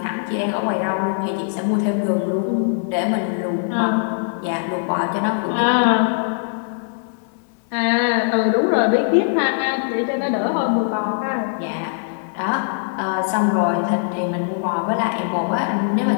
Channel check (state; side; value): silent; right; digital silence